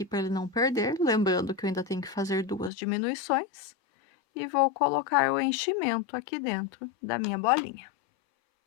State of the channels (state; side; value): drops out; right; at 2.7 s